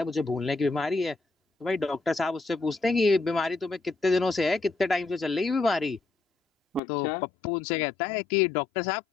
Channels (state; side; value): drops out; right; at 6.8 s